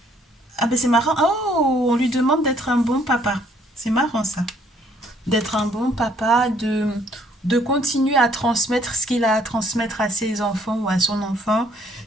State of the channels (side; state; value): both; normal; correlation 0.64